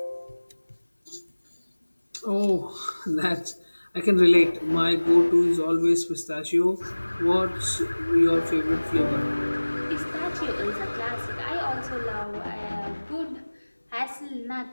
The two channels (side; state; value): both; inverted; correlation -1.00